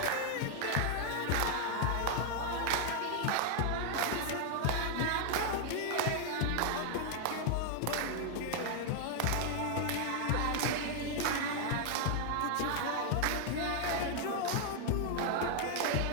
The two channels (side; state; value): both; different; correlation 0.00